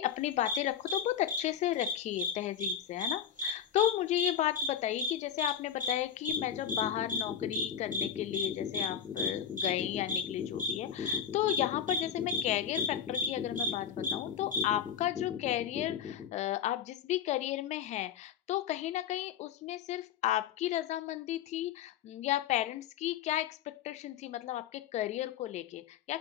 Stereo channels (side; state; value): right; quieter; 8.6 dB